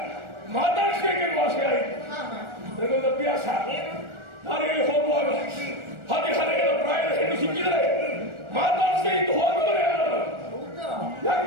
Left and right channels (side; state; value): left; late; 1.4 ms